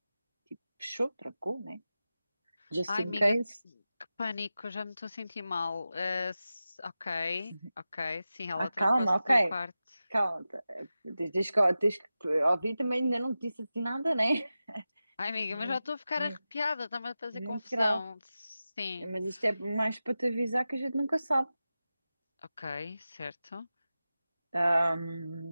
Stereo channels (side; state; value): both; inverted; correlation -0.94